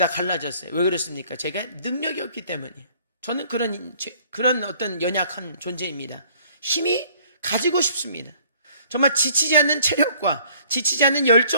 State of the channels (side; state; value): both; inverted; correlation -0.58